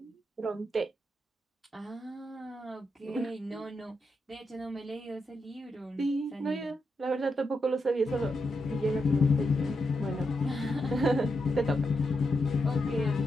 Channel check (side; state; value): both; normal; correlation 0.84